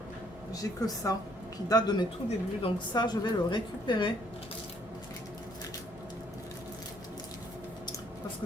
j'ai que ça, qui date de mes tout débuts. Donc ça, je vais le récupérer. Parce que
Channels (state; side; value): normal; both; correlation 0.65